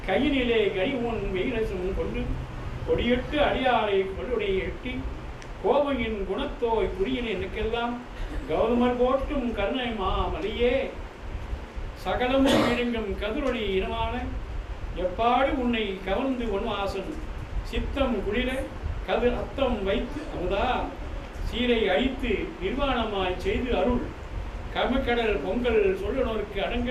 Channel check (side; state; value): both; identical; correlation 1.00